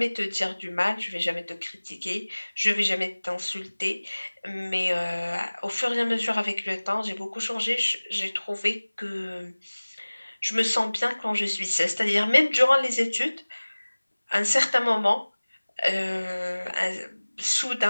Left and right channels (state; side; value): inverted; both; correlation -1.00